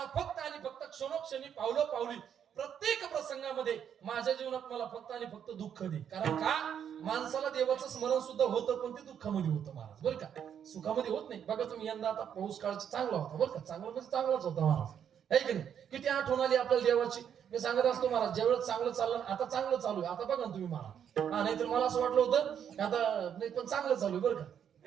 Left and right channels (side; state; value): left; quieter; 8.6 dB